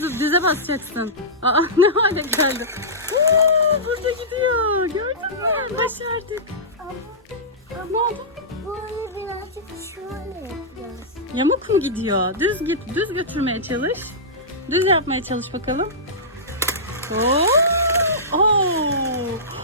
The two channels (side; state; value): both; normal; correlation -0.17